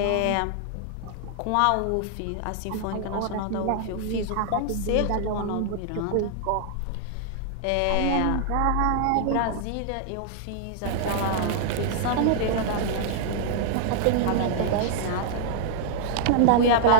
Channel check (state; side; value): different; both; correlation -0.01